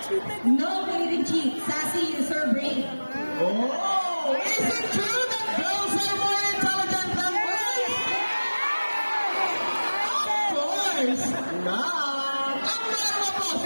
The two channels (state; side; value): inverted; both; correlation -1.00